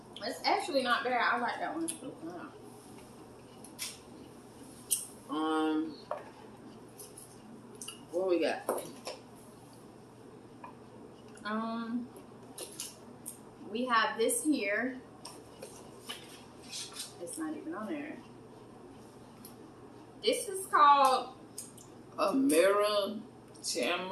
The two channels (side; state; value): both; identical; correlation 1.00